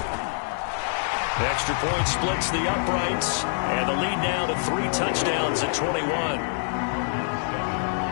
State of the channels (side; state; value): right; silent; digital silence